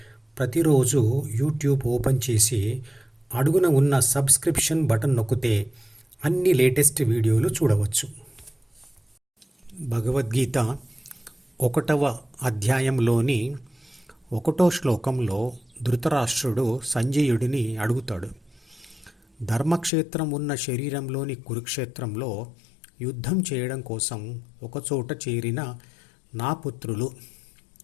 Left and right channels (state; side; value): drops out; right; at 19.9 s